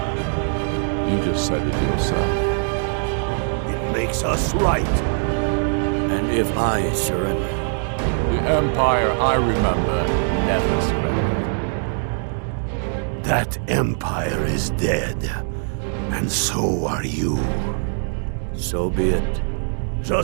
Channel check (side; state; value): left; silent; digital silence